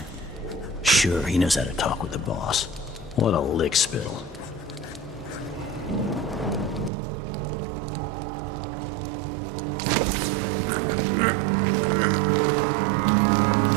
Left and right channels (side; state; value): left; drops out; at 6.9 s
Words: Sure, he knows how to talk with the boss. What a lick spittle.